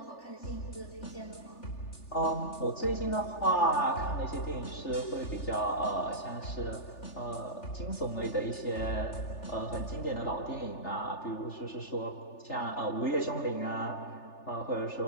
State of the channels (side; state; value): right; late; 3.4 ms